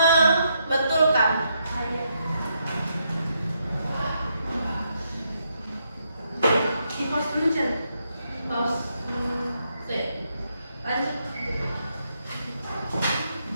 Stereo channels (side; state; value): both; inverted; correlation -0.78